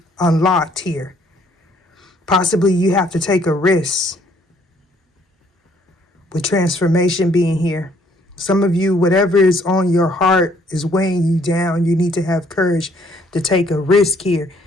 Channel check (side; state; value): both; normal; correlation 0.64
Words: unlocked here. Possibly you have to take a risk with transformation being here. Some of you, whatever is on your heart is weighing you down. You need to have courage to take a risk here